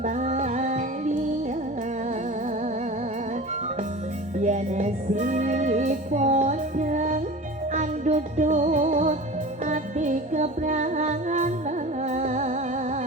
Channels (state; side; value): normal; both; correlation 0.35